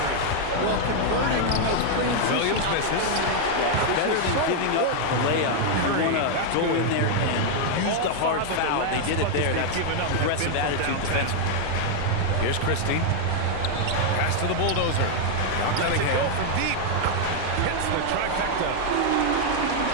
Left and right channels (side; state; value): both; different; correlation 0.00